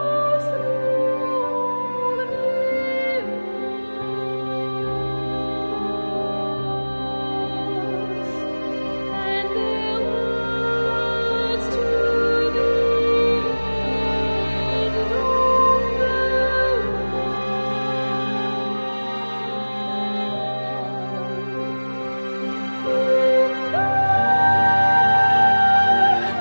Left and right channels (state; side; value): inverted; both; correlation -1.00